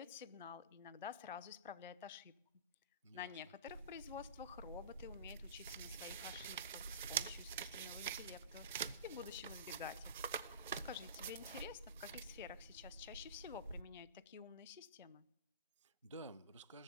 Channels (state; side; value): inverted; both; correlation -0.33